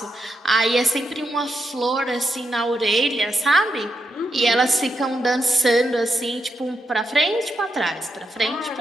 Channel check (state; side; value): normal; both; correlation 0.83